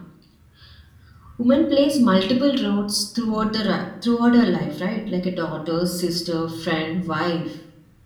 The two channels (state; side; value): identical; both; correlation 1.00